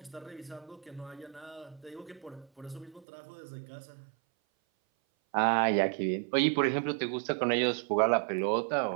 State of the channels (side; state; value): left; drops out; at 3.1 s